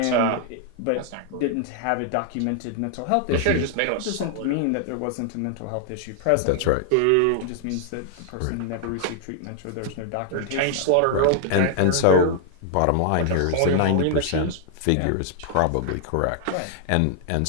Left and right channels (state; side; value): different; both; correlation 0.00